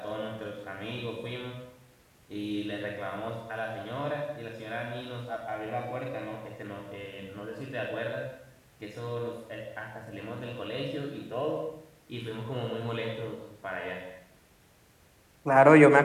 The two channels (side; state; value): both; identical; correlation 1.00